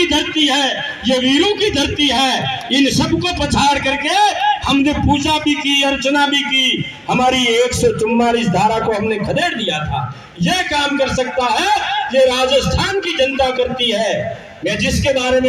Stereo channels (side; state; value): both; identical; correlation 1.00